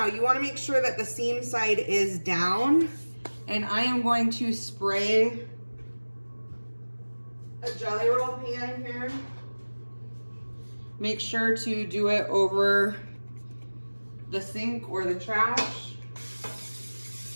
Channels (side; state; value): both; inverted; correlation -1.00